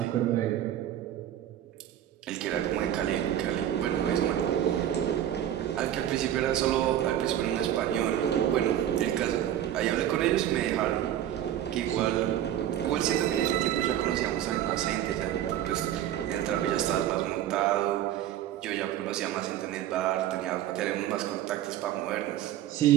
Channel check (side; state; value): left; quieter; 11.5 dB